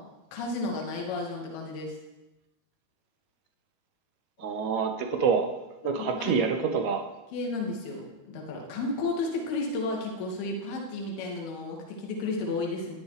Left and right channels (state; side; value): late; right; 12 ms